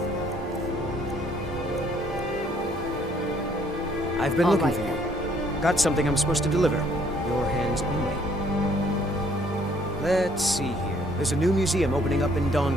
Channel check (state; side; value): normal; both; correlation 0.63